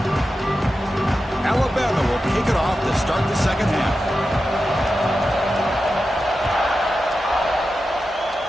Alabama will kick it off to start the second half.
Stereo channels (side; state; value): both; normal; correlation 0.91